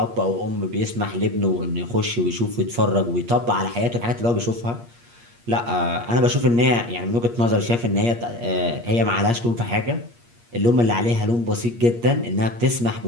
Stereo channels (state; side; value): late; left; 8.5 ms